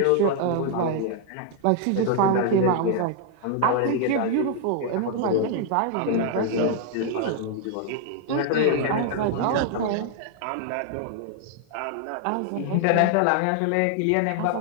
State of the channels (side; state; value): both; different; correlation 0.00